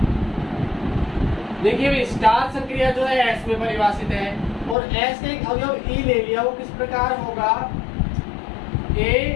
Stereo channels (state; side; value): drops out; right; at 4.8 s